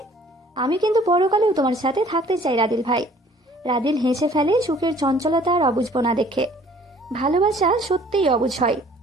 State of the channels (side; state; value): both; normal; correlation 0.55